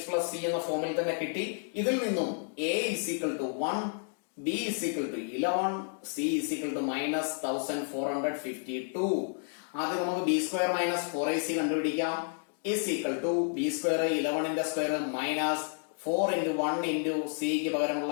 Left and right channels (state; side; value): silent; right; 57 dB below the other